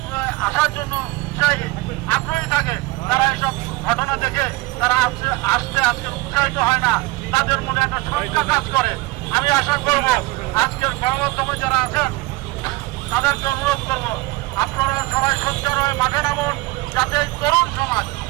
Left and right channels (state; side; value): quieter; left; 21.4 dB